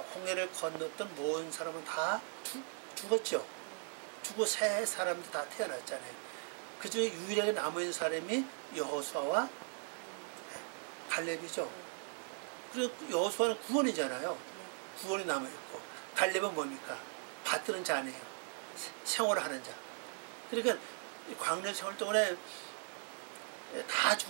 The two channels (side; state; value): left; silent; 52 dB below the other